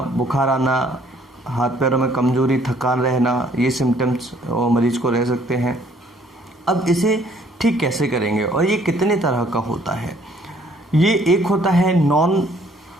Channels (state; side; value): normal; both; correlation 0.62